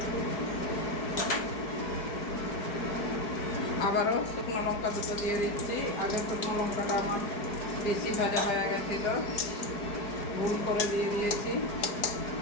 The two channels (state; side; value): late; right; 4.8 ms